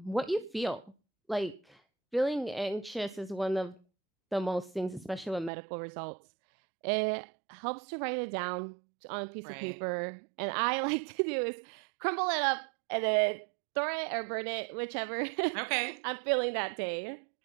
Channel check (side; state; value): left; drops out; at 5.5 s